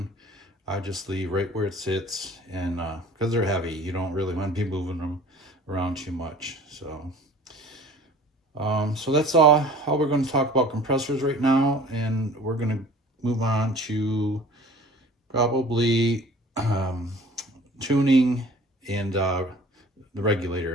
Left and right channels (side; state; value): both; normal; correlation 0.47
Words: I just leave right where it sits, and because they're heavy, you don't really want to be moving them around too much. So so that's all we're going to talk about compressors right now, and we're going to move on to probably tuning and the